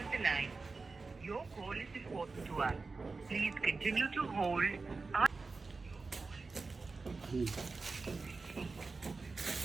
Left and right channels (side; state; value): left; quieter; 4.0 dB